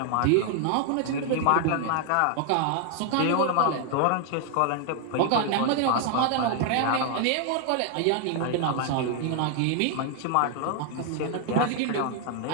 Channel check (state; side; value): different; both; correlation 0.00